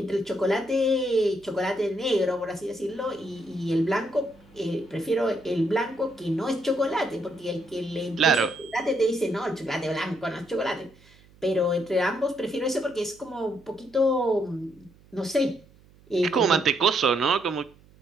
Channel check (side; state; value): right; noise; hum, 27 dB below the sound